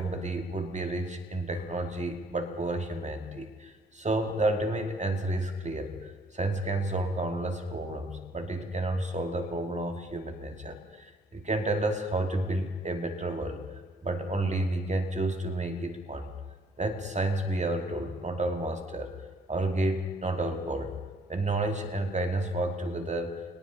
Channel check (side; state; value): both; normal; correlation 0.63